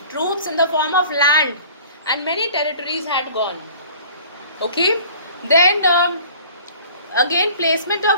troops in the form of land, and many territories had gone. Okay, then again placement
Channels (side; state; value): both; inverted; correlation -0.48